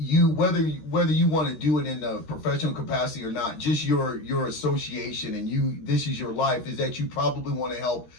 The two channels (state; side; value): late; right; 13 ms